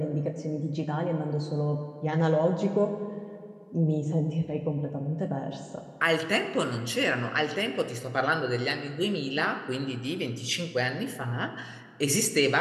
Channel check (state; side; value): identical; both; correlation 1.00